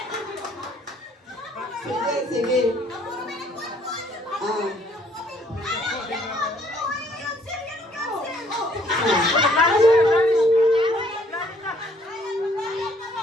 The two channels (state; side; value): normal; both; correlation 0.63